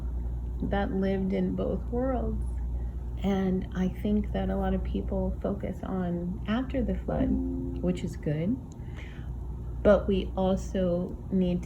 that lived in both worlds. And I think that a lot of people focus on after the flood, which is good. But we also need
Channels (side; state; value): both; identical; correlation 1.00